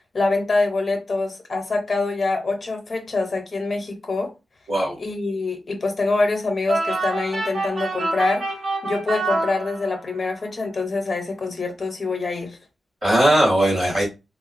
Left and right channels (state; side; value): normal; both; correlation 0.91